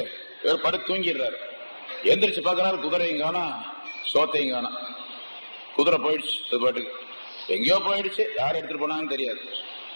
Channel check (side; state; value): both; inverted; correlation -1.00